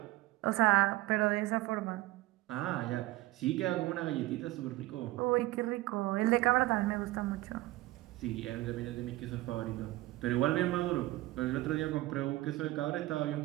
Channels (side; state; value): left; quieter; 18.3 dB